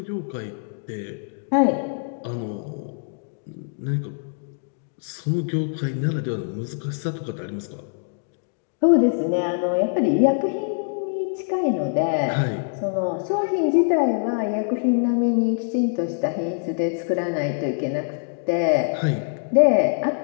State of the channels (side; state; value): right; silent; digital silence